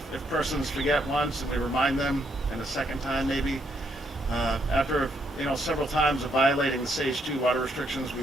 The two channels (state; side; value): normal; both; correlation 0.74